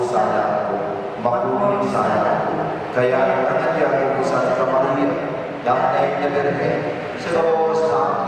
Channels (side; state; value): both; identical; correlation 1.00